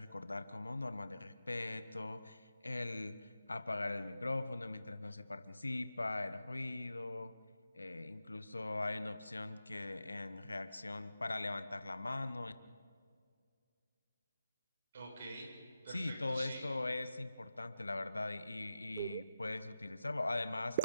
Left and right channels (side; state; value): both; inverted; correlation -0.89